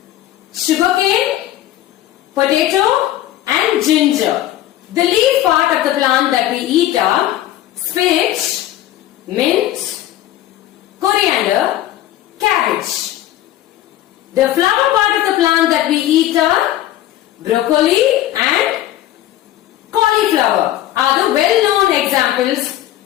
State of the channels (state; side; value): quieter; right; 13.7 dB